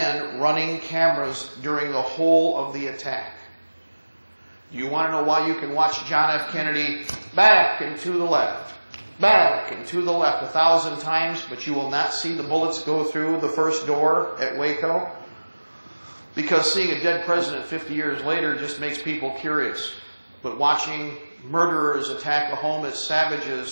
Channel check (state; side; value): inverted; both; correlation -1.00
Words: running cameras during the whole of the attack. Do you want to know why you can watch John F. Kennedy back and to the left, back and to the left 1,000 times, but you will not see the bullets go through the first door at Waco? Because seeing a dead president 50 years later just makes people curious. But watching murderers attack a home as